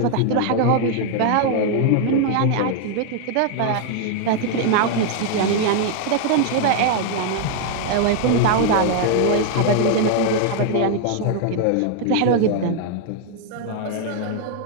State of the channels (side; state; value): both; different; correlation 0.00